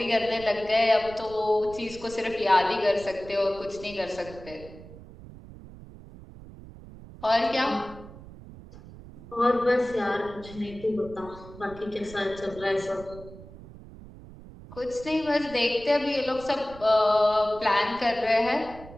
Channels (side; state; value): right; noise; rumble, 17 dB below the sound